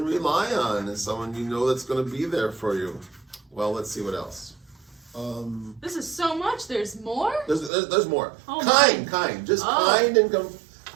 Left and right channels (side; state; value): left; drops out; at 7.7 s